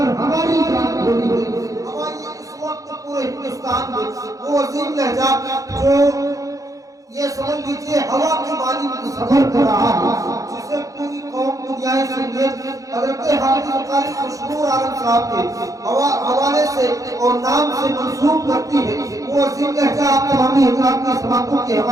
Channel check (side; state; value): left; late; 0.16 ms